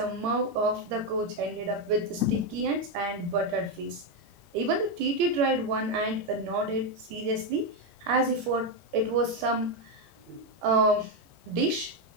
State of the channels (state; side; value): late; left; 18 ms